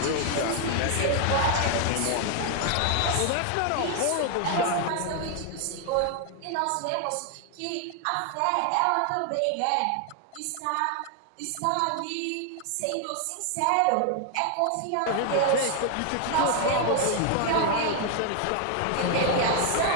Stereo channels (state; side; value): different; both; correlation 0.00